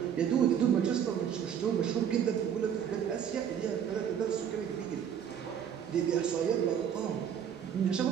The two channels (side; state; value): left; quieter; 8.6 dB